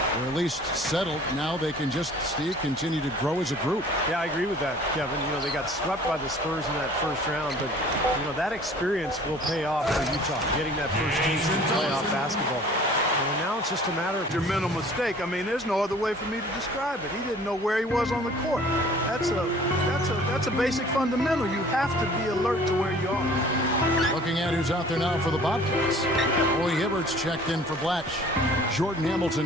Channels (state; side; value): normal; both; correlation 0.50